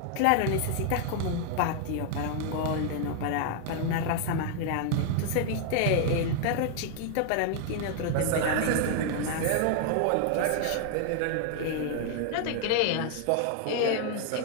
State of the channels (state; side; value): different; both; correlation 0.00